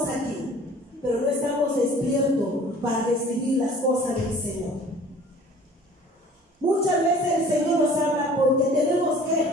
aquí, pero no estamos despiertos para recibir las cosas del Señor. Muchas veces el Señor nos habla porque tenemos que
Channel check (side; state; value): both; normal; correlation 0.49